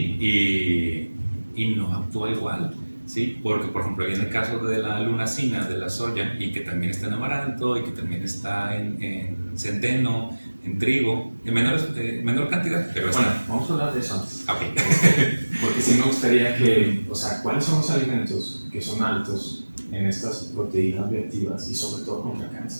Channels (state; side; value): inverted; both; correlation -1.00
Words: Y no actúa igual, ¿sí? Porque, por ejemplo, ahí en el caso de la lunacina, de la soya, y que también está en amaranto, y que también está en centeno, en trigo, en menor cantidad, pero bueno, vamos a hablar de eso antes. Okay. Porque sí me gustaría que, o sea, ¿cuáles son los alimentos que son altos en estas proteínas bioactivas y sobre todo contra